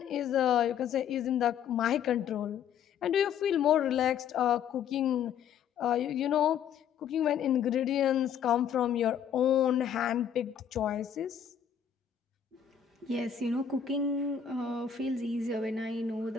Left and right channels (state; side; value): quieter; right; 8.3 dB